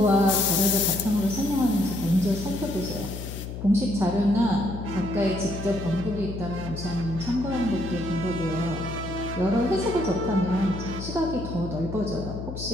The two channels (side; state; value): left; noise; hum, 8 dB below the sound